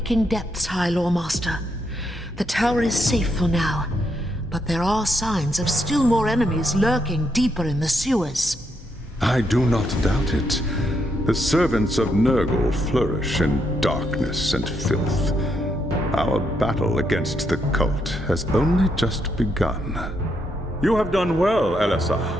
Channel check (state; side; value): normal; both; correlation 0.78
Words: depths, High Lawmaster. The tower is safe for now, but there are signs of still more enemies lurking deeper in the sewers. I do not doubt it. The servants of Nurgle flourish in darkness and filth. Our battle against the cult has only just begun. You have done well,